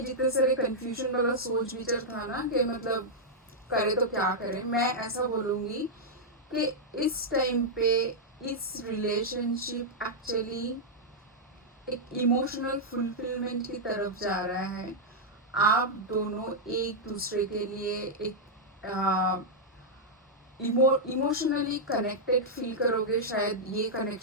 जितने सारे कंफ्यूजन वाला सोच विचार था ना कि मतलब करे तो क्या करें। मैं ऐसा बोलूँगी कि इस टाइम पे इस रिलेशनशिप एक्चुअली एक इमोशनल फुलफिलमेंट की तरफ जा रहा है। आप दोनों एक दूसरे के लिए एक इमोशनली कनेक्टेड फील करोगे। शायद ये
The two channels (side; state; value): both; normal; correlation -0.06